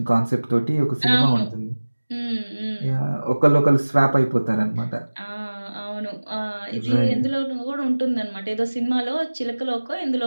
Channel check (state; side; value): inverted; both; correlation -1.00